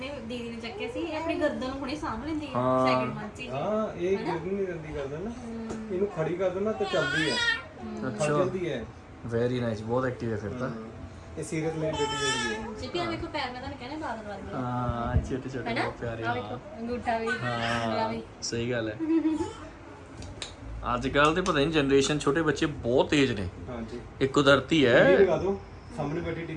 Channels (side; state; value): both; identical; correlation 1.00